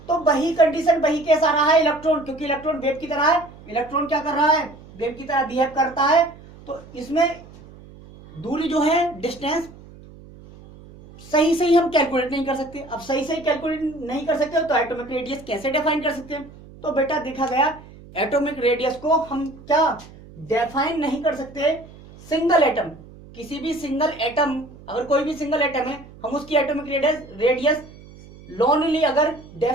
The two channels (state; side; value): noise; right; hum, 20 dB below the sound